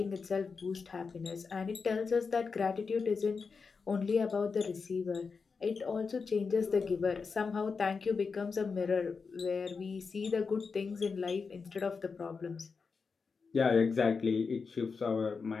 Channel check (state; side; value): quieter; right; 5.0 dB